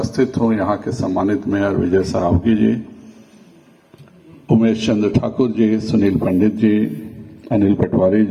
हूँ, यहाँ के सम्मानित मेयर विजय सरावगी जी, उमेश चंद्र ठाकुर जी, सुनील पंडित जी, अनिल पटवारी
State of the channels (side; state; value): both; identical; correlation 1.00